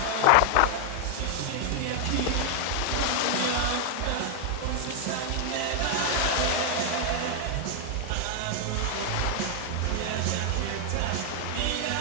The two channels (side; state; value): both; different; correlation 0.00